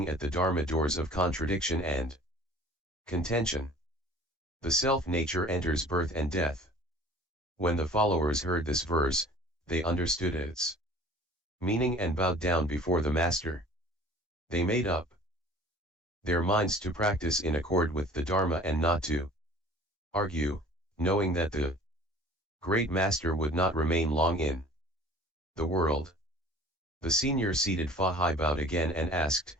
at the Dharma doors of contradiction and contention, the self-nature enters birth and death. When the followers heard this verse, they understood its meaning and bowed down before the Master. They made up their minds to practice in accord with the Dharma and not to argue, knowing that the great Master would not remain long in the world. The senior seated Fahai bowed again and asked,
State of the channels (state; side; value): normal; both; correlation 0.47